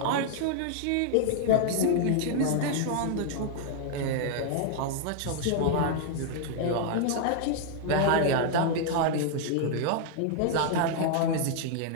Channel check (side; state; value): both; different; correlation 0.00